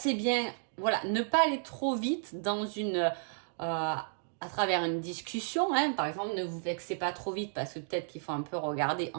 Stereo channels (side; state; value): left; silent; digital silence